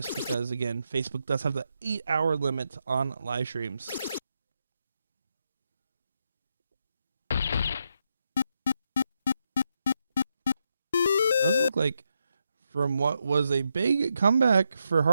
because, again, Facebook does have the 8-hour limit on live streams. It does look like, from what was a big comeback for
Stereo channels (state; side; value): inverted; both; correlation -0.82